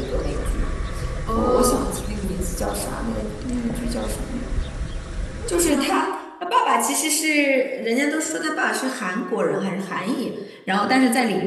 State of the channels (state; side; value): identical; both; correlation 1.00